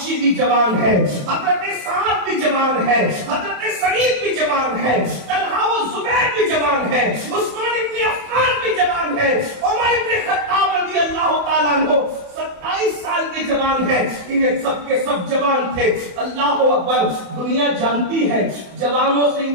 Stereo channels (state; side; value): late; left; 27 ms